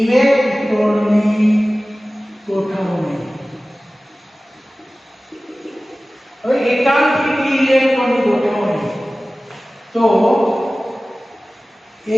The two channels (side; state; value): both; normal; correlation 0.97